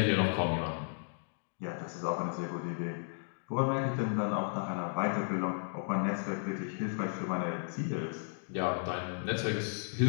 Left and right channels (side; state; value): right; silent; digital silence